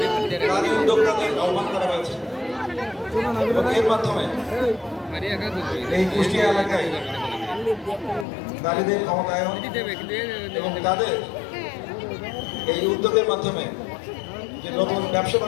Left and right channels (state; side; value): drops out; right; at 8.2 s